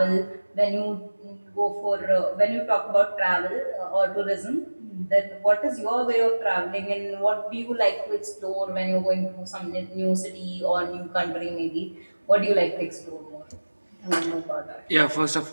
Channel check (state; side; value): inverted; both; correlation -1.00